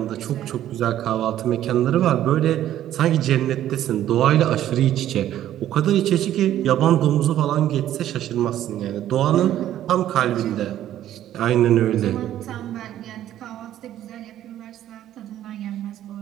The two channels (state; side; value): quieter; left; 12.2 dB